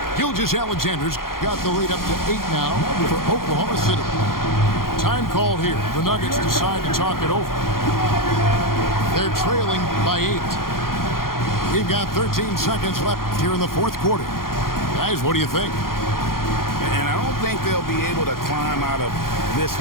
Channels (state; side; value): late; right; 0.92 ms